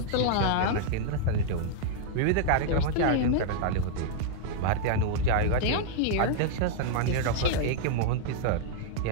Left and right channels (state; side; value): different; both; correlation -0.01